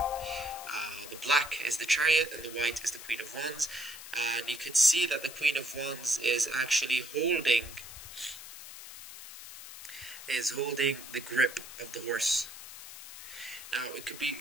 The black is the Chariot and the white is the Queen of Wands. And you can see that the Queen of Wands is actually holding the grip of the horse. Now it could be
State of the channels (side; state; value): left; noise; hiss, 13 dB below the sound